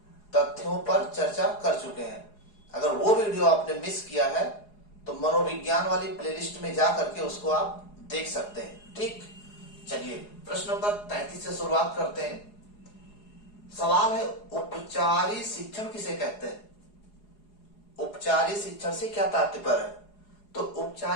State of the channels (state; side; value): late; right; 4.8 ms